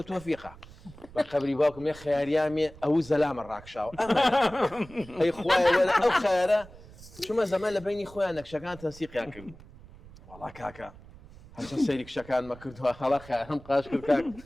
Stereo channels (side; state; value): right; noise; rumble, 20 dB below the sound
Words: تۆفیقە بە قەبری باوکم یە خەیاریامێ ئەو زەلامە ڕاکشاوە ئەمە ئەی خوایە وەرە ئەو خەیارە چوومە زەمان لە بینی خۆیان نەکشەکان تەنسیقیان کردبوو وەڵا کاکە هەرچەند سەیری کشەکانمە کردووە هەڵا خەیارم قاش کرد کاک